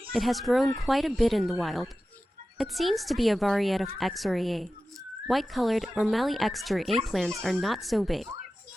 It has grown quite a bit in the wild. It seems to be a variety of Exora. White-colored or Mali Exora plants are not so big,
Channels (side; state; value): both; normal; correlation 0.94